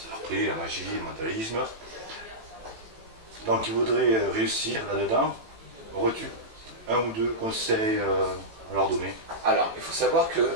après la magie, le mentalisme. Donc, ils voudraient réussir là-dedans. Aurais-tu un ou deux conseils à leur donner? Alors, il faut savoir que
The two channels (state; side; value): late; left; 18 ms